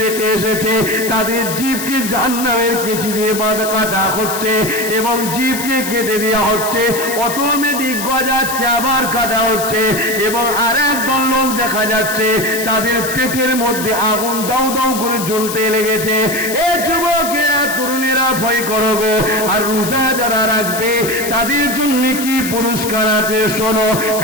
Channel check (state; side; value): noise; left; hiss, 7 dB below the sound